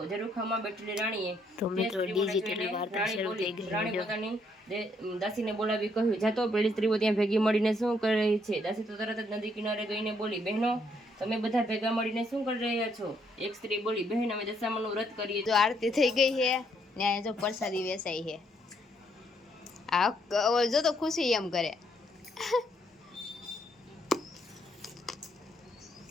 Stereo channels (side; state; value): both; normal; correlation 0.72